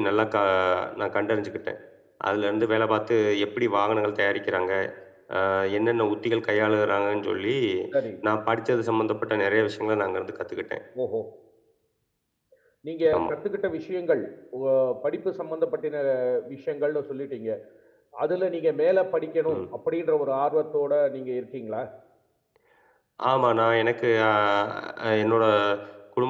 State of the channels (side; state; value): both; identical; correlation 1.00